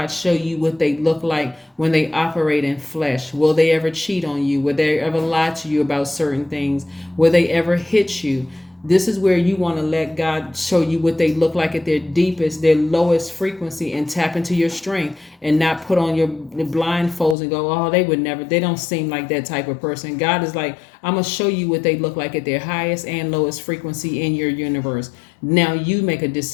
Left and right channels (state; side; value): drops out; right; at 17.4 s